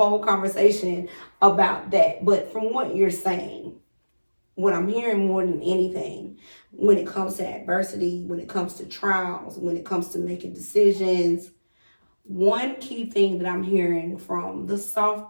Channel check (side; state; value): both; inverted; correlation -1.00